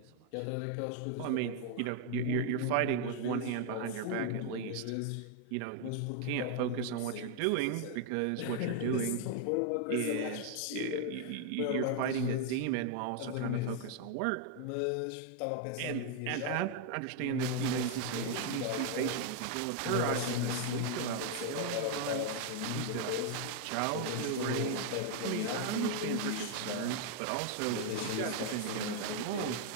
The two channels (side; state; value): both; different; correlation 0.00